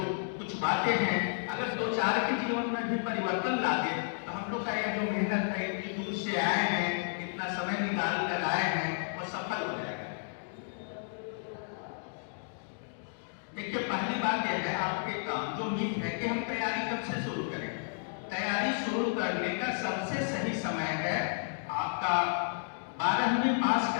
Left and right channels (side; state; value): right; silent; digital silence